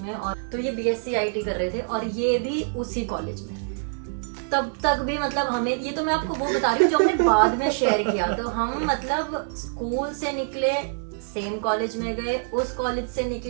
में, और तो ये BSc IT कर रहे थे और ये भी उसी कॉलेज में। तब तक भी मतलब हमें, ये तो मैं आपको वो बता रही हूँ जो हमने बाद में शेयर किया। तो हम मतलब स्कूल से निकले सेम कॉलेज में गए, उस कॉलेज से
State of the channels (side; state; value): left; silent; digital silence